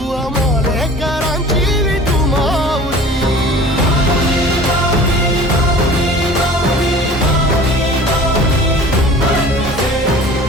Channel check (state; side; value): normal; both; correlation 0.43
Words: आमालेकरांची विठू माऊली.